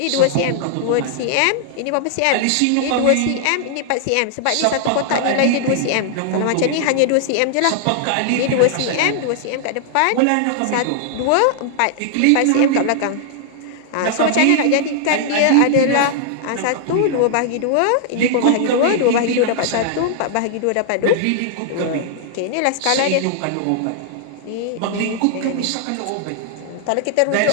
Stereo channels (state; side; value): different; both; correlation -0.01